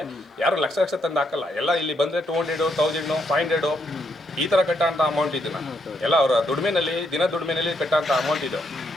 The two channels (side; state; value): both; normal; correlation 0.77